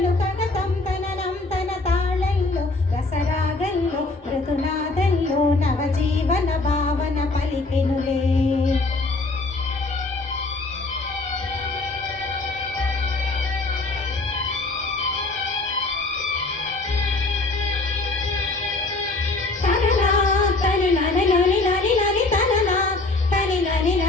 కగతం తననం తన తాళల్లో రసరాగల్లో మృదునాదల్లో నవజీవన భావన పలికెనులే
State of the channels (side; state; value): right; quieter; 3.2 dB